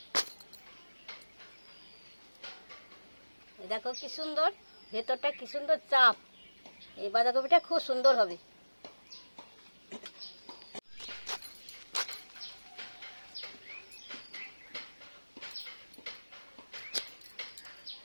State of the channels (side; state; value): both; inverted; correlation -1.00